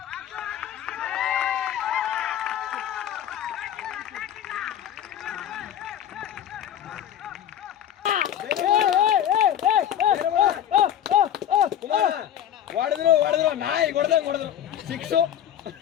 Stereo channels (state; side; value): quieter; right; 10.3 dB